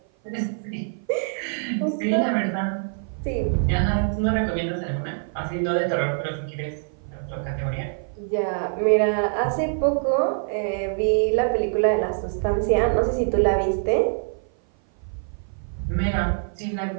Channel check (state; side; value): silent; left; 56 dB below the other